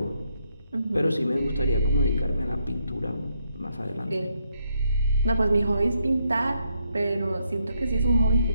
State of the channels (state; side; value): inverted; both; correlation -0.76